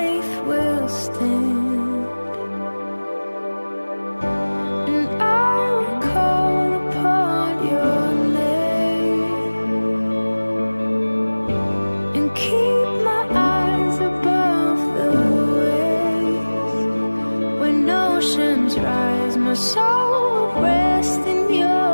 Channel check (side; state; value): both; inverted; correlation -1.00